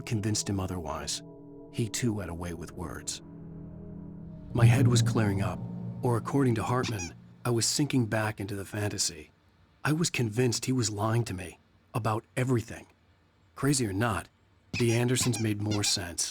convinced him otherwise. He, too, had a way with words. My head was clearing up, or according to Hartman, I was sinking back into the fantasy. I was convinced he was lying to me about everything. Crazy or not, the Andersons made more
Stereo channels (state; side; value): identical; both; correlation 1.00